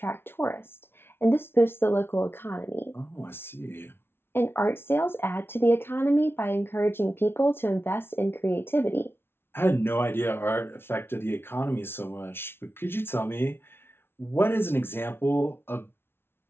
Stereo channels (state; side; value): late; right; 0.11 ms